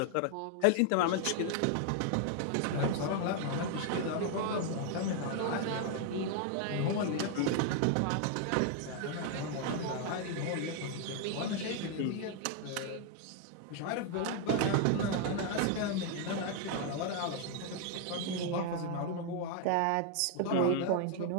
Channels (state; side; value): different; both; correlation 0.00